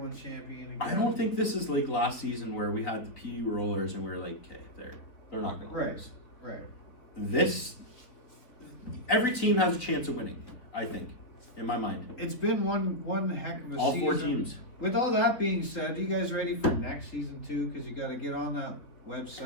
champion again. I don't think this is like last season where we had the PU rollers and we are like, okay, they're not gonna lose. Right. Every team has a chance of winning, I think, in my mind. It's been one heck of a All season. 4 teams. With all that being said, you guys ready for next season too? Because you got to get on that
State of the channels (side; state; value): right; late; 4.1 ms